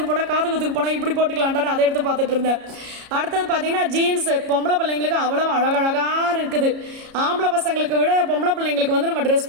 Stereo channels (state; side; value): late; left; 33 ms